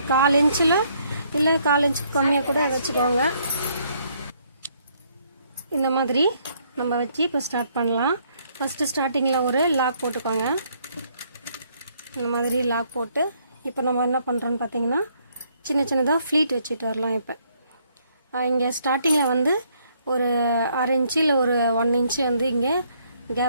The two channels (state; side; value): inverted; both; correlation -0.68